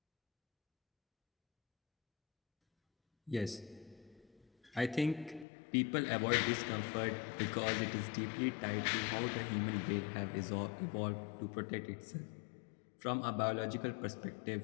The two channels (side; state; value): right; drops out; at 5.5 s